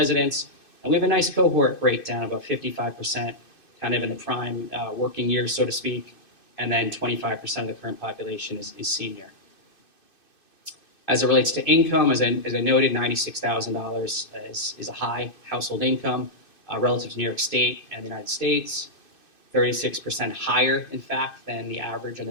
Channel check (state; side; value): late; right; 2.6 ms